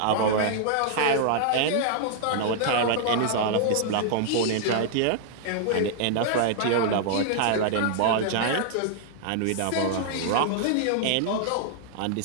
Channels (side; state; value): both; different; correlation -0.01